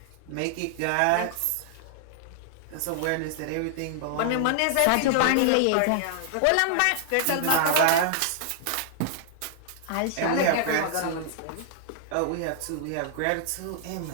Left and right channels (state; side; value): different; both; correlation -0.01